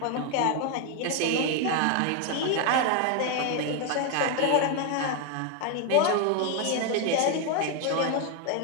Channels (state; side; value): different; both; correlation 0.01